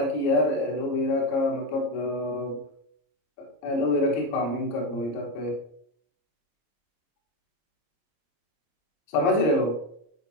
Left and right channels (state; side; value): late; right; 26 ms